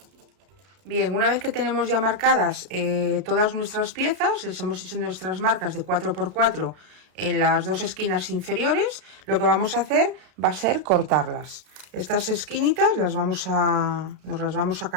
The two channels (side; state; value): left; late; 33 ms